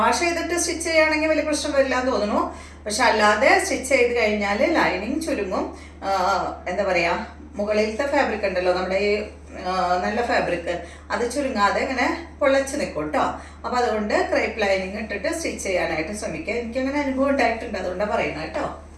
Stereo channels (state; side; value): identical; both; correlation 1.00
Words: ചെയ്തിട്ട് സ്റ്റിച്ച് ചെയ്യുകയാണെങ്കിൽ വലിയ പ്രശ്നം വരില്ല എന്ന് തോന്നുന്നു. പക്ഷെ അല്ലാതെ സ്റ്റിച്ച് ചെയ്ത് കഴിഞ്ഞാൽ ലൈനിങ് ചുരുങ്ങും. എന്താ പറയുക, മുകളിലത്തെ ഫാബ്രിക് ഉണ്ടല്ലോ നമ്മുടെ ഈ നല്ല ഫാബ്രിക്, അത് ചുരുങ്ങാതെ ഇങ്ങനെ പൊള്ളച്ച് നിൽക്കും കേട്ടോ. അപ്പോൾ അതുകൊണ്ട് ക്രേപ്പ് ലൈനിങ് ഇട്ടിട്ട് സ്റ്റിച്ച് ചെയ്യാനായിട്ട് ശ്രമിക്കുക. എനിക്കങ്ങനെ അനുഭവം ഉണ്ടായിട്ടുണ്ട്, അതുകൊണ്ടാണ് പറയുന്നത് കേട്ടോ.